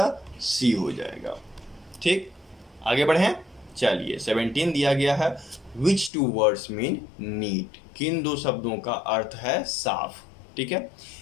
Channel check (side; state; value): right; drops out; at 6.1 s